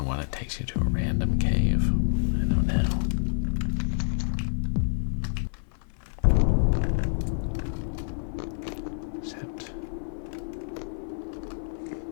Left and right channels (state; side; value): silent; right; 55 dB below the other